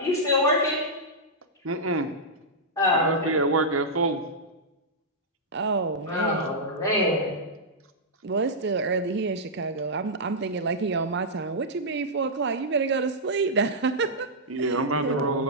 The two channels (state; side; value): normal; both; correlation -0.10